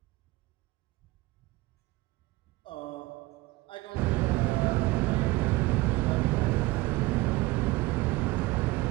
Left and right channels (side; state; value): left; quieter; 20.5 dB